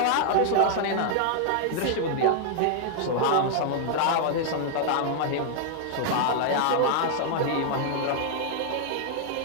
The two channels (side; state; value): both; different; correlation 0.00